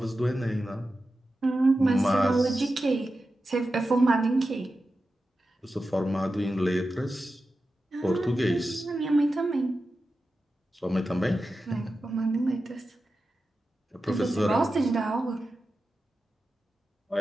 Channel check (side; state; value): both; normal; correlation 0.92